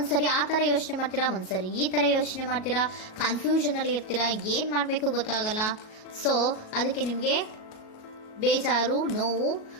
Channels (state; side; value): late; right; 37 ms